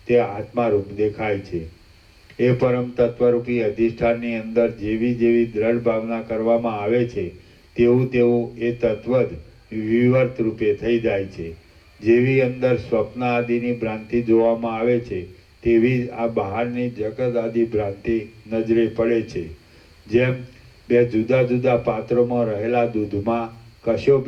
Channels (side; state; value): both; identical; correlation 1.00